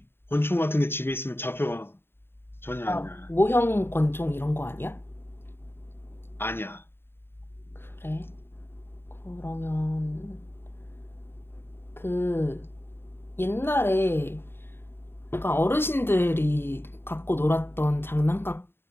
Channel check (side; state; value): right; late; 0.11 ms